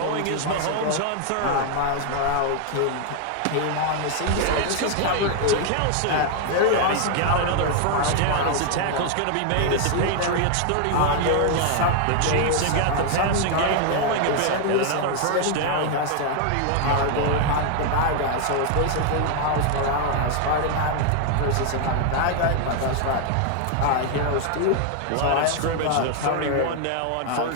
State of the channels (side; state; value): both; different; correlation 0.00